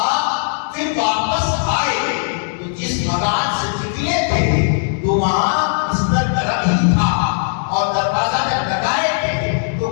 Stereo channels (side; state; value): right; silent; digital silence